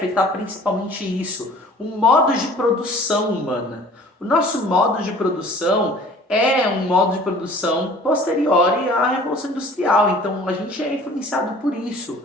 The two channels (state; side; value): normal; both; correlation 0.48